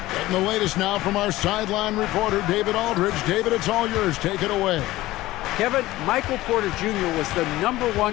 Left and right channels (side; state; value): right; quieter; 17.2 dB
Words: Getting the latest now from our sideline reporter, David Aldridge. David, it's all yours. Take it away. Kevin, Michael Porter Jr. was the